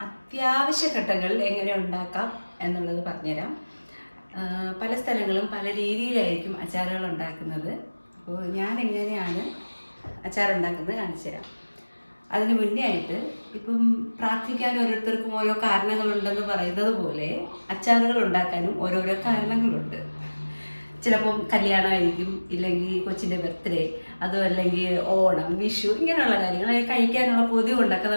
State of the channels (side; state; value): both; inverted; correlation -1.00